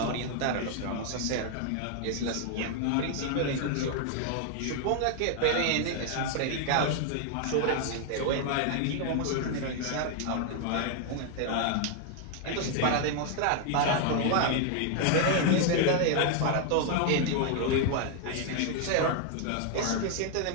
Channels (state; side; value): different; both; correlation 0.00